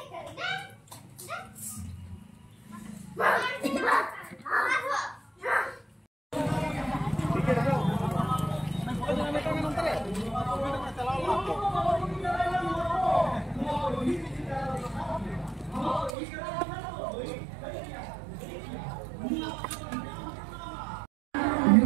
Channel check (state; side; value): drops out; left; at 16.1 s